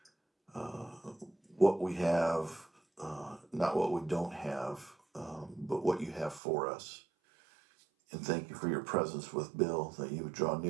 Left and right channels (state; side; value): drops out; left; at 6.4 s